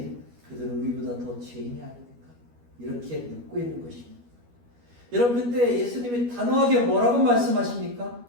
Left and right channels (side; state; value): left; late; 12 ms